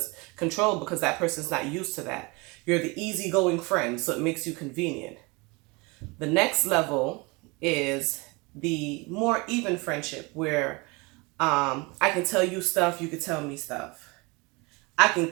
control because that person's not used to that. You're the easygoing friend, so it makes you convenient. The next level is the more even friendship, where I can tell you stuff, you can tell me stuff. I can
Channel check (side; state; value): left; quieter; 26.8 dB